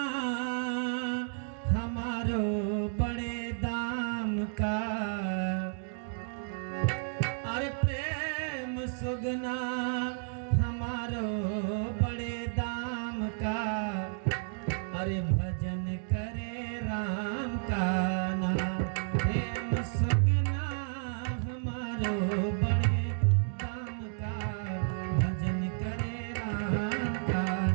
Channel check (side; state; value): left; silent; digital silence